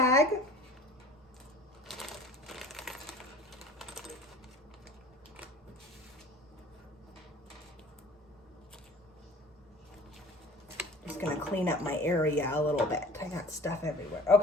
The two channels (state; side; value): normal; both; correlation 0.46